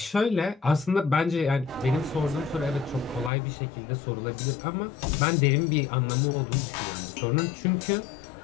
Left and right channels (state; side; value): drops out; right; at 3.3 s